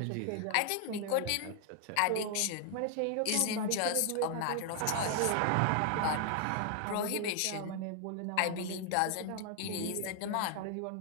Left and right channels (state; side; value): different; both; correlation 0.00